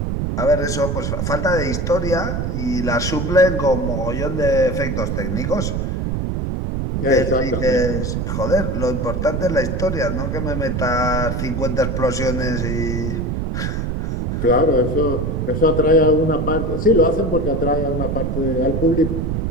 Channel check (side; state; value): right; noise; rumble, 1 dB below the sound